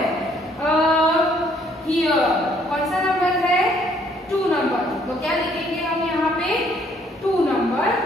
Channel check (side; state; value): both; normal; correlation 0.65